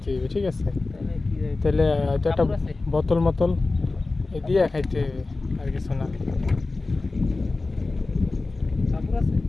হইবে, ঠিক আছে। তাহলে এটা একটা বোতল মতল দিয়ে খাইতে হইবে, আর কিছু না।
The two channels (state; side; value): quieter; right; 3.4 dB